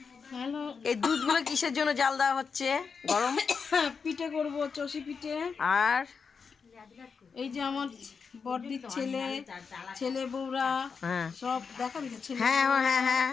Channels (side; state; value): right; quieter; 5.6 dB